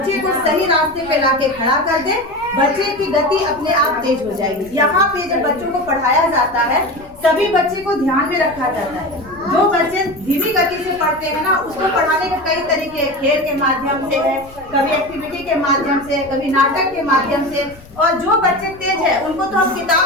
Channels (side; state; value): left; noise; rumble, 22 dB below the sound